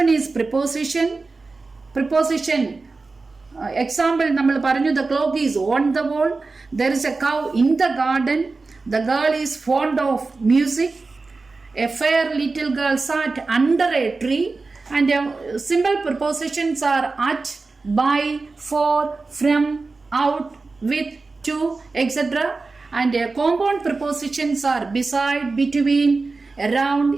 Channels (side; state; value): left; quieter; 3.8 dB